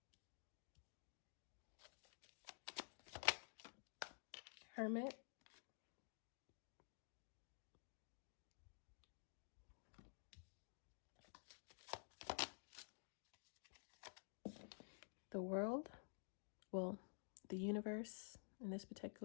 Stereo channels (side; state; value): right; silent; digital silence